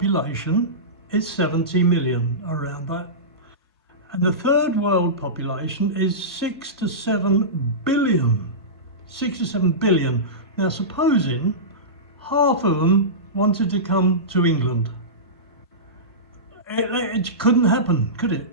is 70 million, around that. And the third world population is 6 to 7 billion. 6 to 7 billion. Now, supposing half of them wanted to come to England. It couldn't happen, could it?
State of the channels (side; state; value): both; normal; correlation -0.19